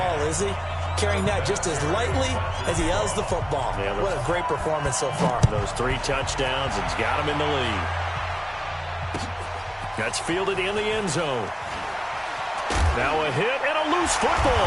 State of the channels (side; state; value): both; identical; correlation 1.00